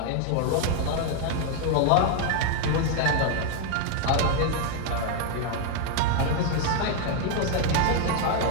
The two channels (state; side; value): different; both; correlation 0.00